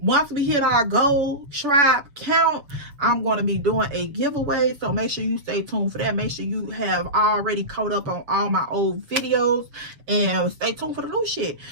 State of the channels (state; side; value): late; left; 7.1 ms